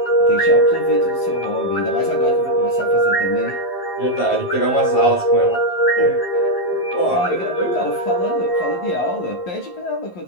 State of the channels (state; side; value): late; right; 11 ms